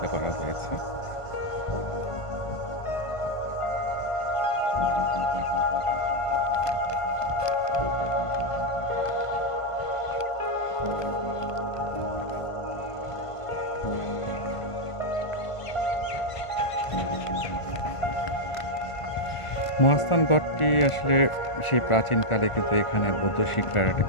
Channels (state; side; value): late; right; 1.5 ms